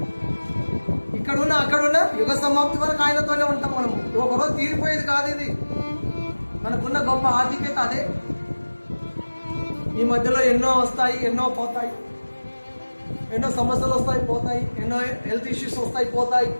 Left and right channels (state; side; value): inverted; both; correlation -1.00